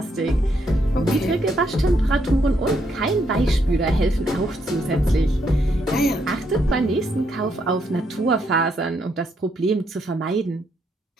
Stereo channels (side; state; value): both; normal; correlation 0.76